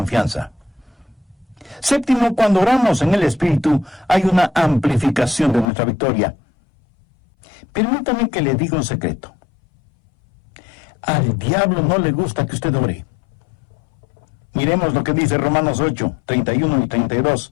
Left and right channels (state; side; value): drops out; right; at 5.7 s